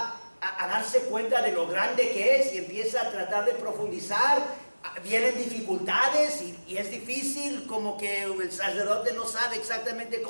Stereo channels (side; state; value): both; inverted; correlation -1.00